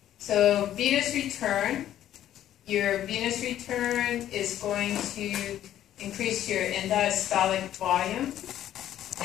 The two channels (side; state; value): right; quieter; 11.8 dB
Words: So venous return. Your venous return is going to increase your end diastolic volume,